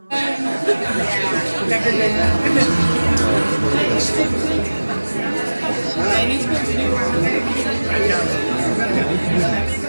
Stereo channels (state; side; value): inverted; both; correlation -1.00